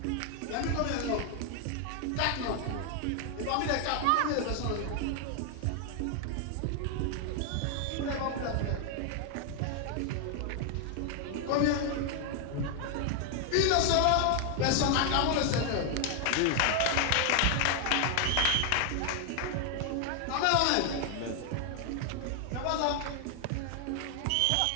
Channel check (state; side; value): different; both; correlation 0.00